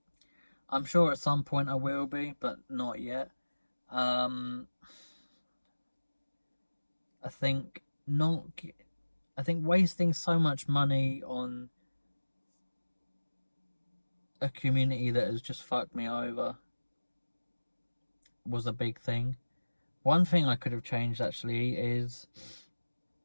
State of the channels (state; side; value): inverted; both; correlation -1.00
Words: I'm sure at some point I will be, but not yet. I think wasting so much money on a community that has just fucked me over was a big thing. One thing I could have changed actually is